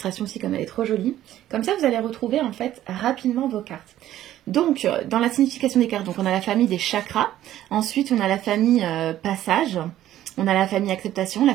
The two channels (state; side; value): quieter; left; 13.0 dB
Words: aussi, comme elle est trop jolie. Comme ça, vous allez retrouver en fait rapidement vos cartes. Donc, dans la signification des cartes, donc on a la famille des chakras. Ensuite, on a la famille passage. On a la famille acceptation, la